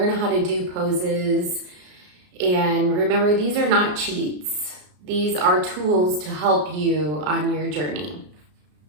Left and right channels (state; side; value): late; left; 33 ms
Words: how to do poses. And remember, these are not cheats. These are tools to help you on your journey.